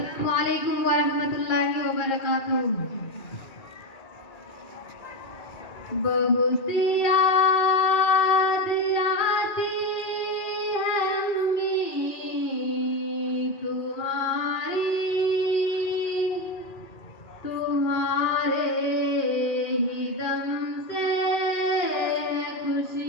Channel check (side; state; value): right; late; 2.0 ms